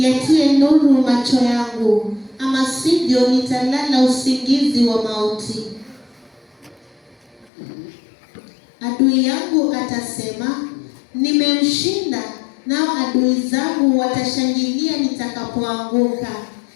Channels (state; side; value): drops out; right; at 7.5 s